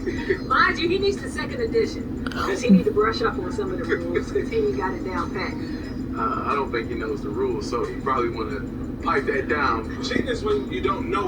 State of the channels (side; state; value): both; identical; correlation 1.00